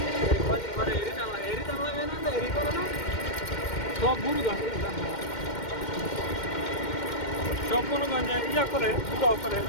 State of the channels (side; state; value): right; late; 2.1 ms